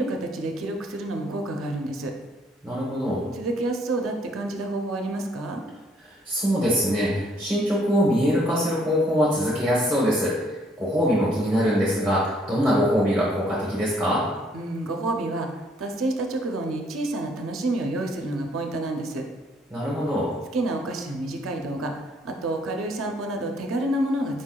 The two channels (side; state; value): both; normal; correlation 0.65